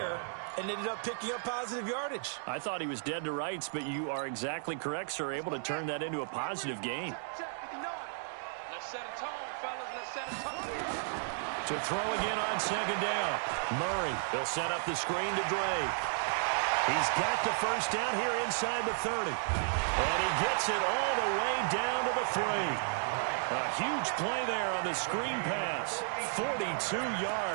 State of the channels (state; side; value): silent; left; digital silence